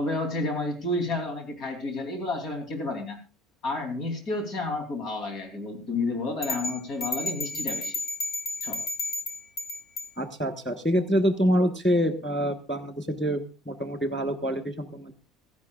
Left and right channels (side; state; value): both; normal; correlation 0.64